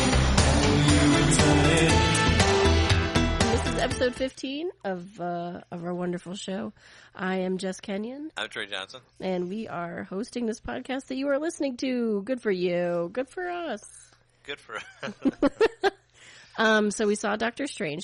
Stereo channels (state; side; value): identical; both; correlation 1.00